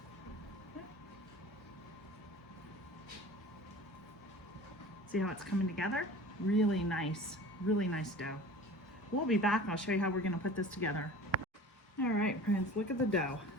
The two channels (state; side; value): normal; both; correlation 0.40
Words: See how it's coming together? Really nice dough. We'll be back and I'll show you how we're going to put this together. All right, friends, look at the dough.